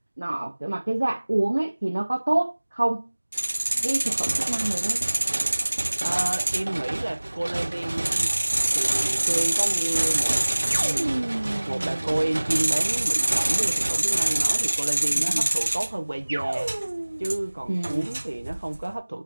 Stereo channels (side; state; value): both; inverted; correlation -1.00